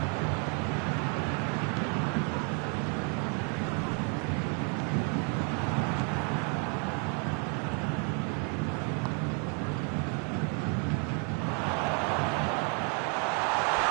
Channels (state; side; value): quieter; left; 38.2 dB